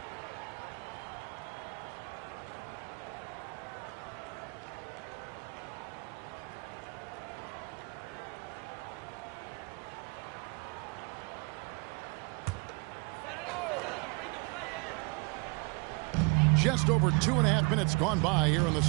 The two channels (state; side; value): quieter; left; 30.8 dB